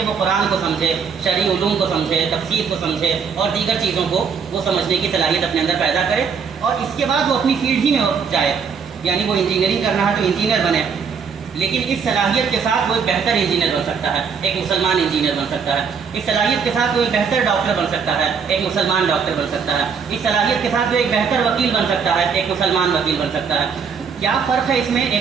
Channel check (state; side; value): quieter; left; 6.2 dB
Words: وہ قرآن کو سمجھے، شرعی علوم کو سمجھے، تفسیر کو سمجھے اور دیگر چیزوں کو وہ سمجھنے کی صلاحیت اپنے اندر پیدا کرے، اور اس کے بعد وہ اپنی فیلڈ ہی میں جائے. یعنی وہ انجینئرنگ کرنا ہے تو انجینئر بنے، لیکن اس صلاحیت کے ساتھ وہ ایک بہتر انجینئر بن سکتا ہے، ایک مسلمان انجینئر بن سکتا ہے. اس صلاحیت کے ساتھ وہ ایک بہتر ڈاکٹر بن سکتا ہے، ایک مسلمان ڈاکٹر بن سکتا ہے. اس صلاحیت کے ساتھ وہ ایک بہتر وکیل بن سکتا ہے، ایک مسلمان وکیل بن سکتا ہے. کیا فرق ہے اس میں